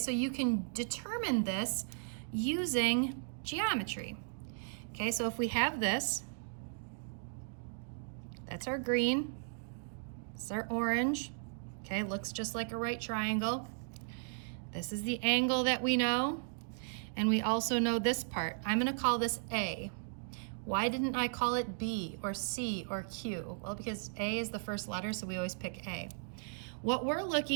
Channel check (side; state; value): left; silent; digital silence